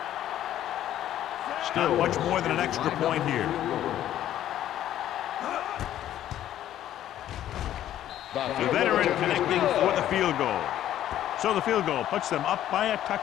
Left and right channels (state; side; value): quieter; right; 12.0 dB